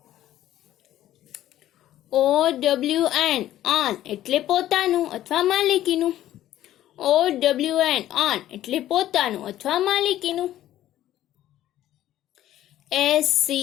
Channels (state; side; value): quieter; right; 13.2 dB